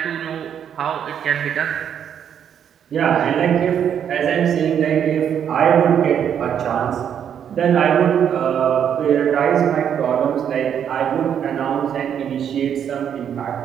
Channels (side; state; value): left; quieter; 8.7 dB